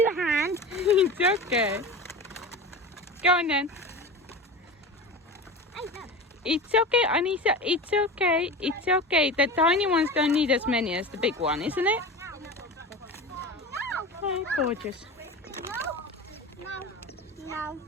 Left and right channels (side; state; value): both; normal; correlation 0.30